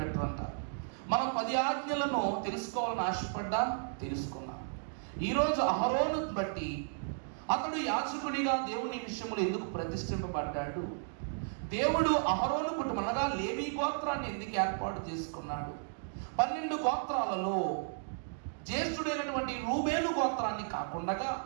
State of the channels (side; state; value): left; silent; digital silence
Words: మనం 10 ఆజ్ఞలను తెలుసుకోవాలని ఆశపడ్డా తెలుసుకున్నాం. ఈరోజు అహరోను బట్టి అతడు యాజకుడిగా దేవుని విషయంలో ఎందుకు ప్రతిష్ఠింపబడ్డాడు, దేవుడు అహరోను కుటుంబం అనగా లేవీ గోత్రాన్ని ఎందుకు ఏర్పాటు చేసుకున్నాడు, 12 గోత్రాలలో జ్యేష్ఠుడైనటువంటి రూబేలు గోత్రాన్ని కాకుండా